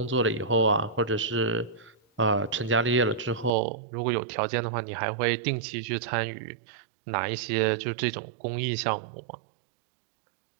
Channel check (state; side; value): drops out; left; at 3.5 s